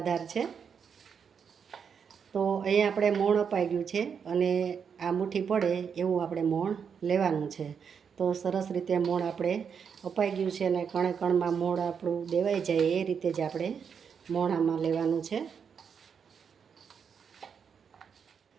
છે. તો અહીંયા આપણે મોણ અપાઈ ગયું છે અને આ મુઠ્ઠી પડે એવું આપણે મોણ લેવાનું છે. તો સરસ રીતે મોણ આપણે અપાઈ ગયું છે અને કણે કણમાં મોણ આપણું દેવાઈ જાય એ રીતે જ આપણે મોણ આમાં લેવાનું છે.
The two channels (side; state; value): left; quieter; 6.8 dB